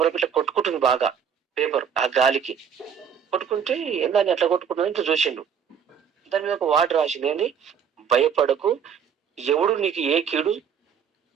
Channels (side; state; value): left; quieter; 7.5 dB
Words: ఇట్లా కొట్టుకుంటుంది బాగా, పేపర్ ఆ గాలికి కొట్టుకుంటే ఏందని అట్లా కొట్టుకుంటుంది ఇట్లా చూసిండు. దాని మీద ఒక వార్డు రాసింది, ఏంటి, భయపడకు, ఎవడు నీకు ఏ కీడు